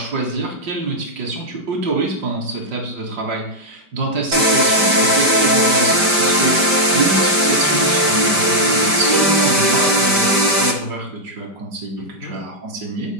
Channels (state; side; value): late; left; 5.1 ms